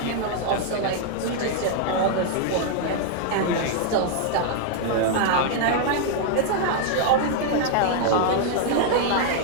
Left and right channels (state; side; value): different; both; correlation 0.00